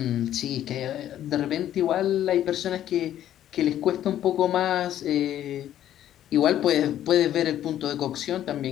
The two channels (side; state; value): right; quieter; 11.7 dB